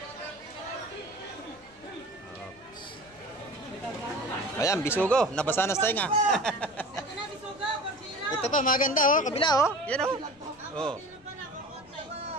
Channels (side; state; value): left; noise; rumble, 28 dB below the sound